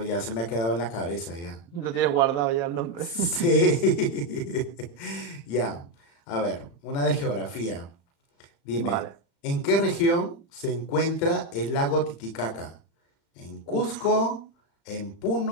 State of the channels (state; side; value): late; right; 35 ms